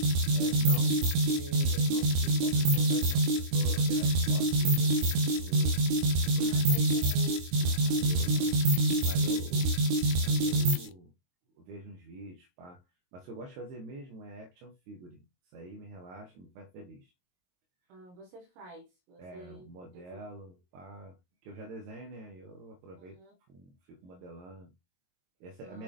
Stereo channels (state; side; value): late; left; 22 ms